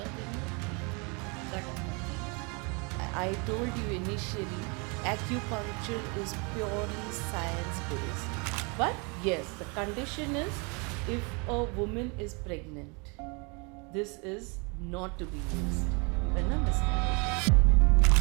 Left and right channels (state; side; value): quieter; left; 31.7 dB